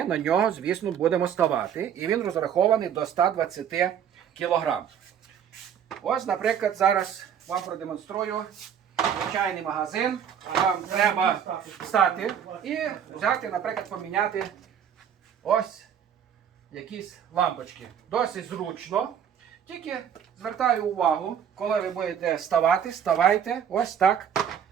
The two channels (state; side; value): quieter; left; 8.6 dB